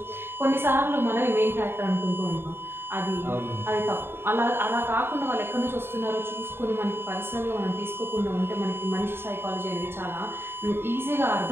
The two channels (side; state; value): left; late; 0.11 ms